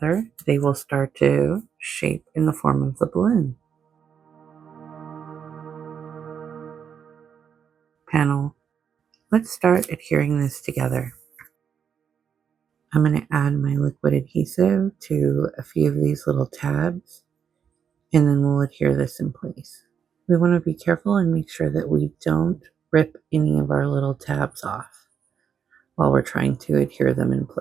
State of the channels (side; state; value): left; quieter; 7.5 dB